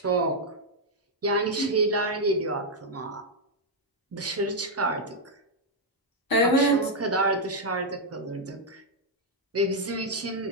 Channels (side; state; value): both; normal; correlation -0.02